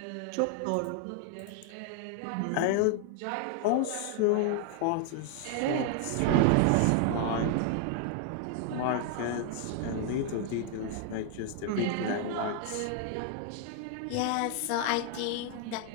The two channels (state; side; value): different; both; correlation 0.00